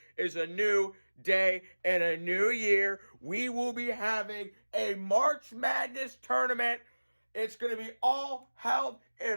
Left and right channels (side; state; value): both; inverted; correlation -1.00